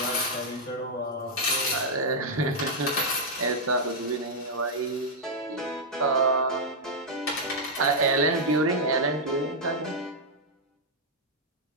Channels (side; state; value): both; normal; correlation -0.05